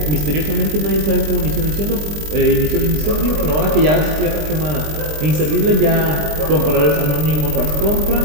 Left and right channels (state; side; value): late; left; 20 ms